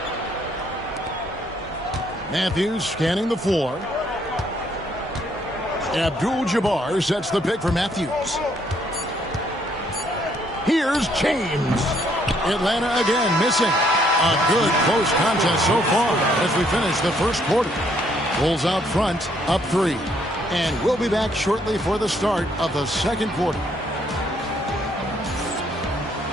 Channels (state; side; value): normal; both; correlation 0.68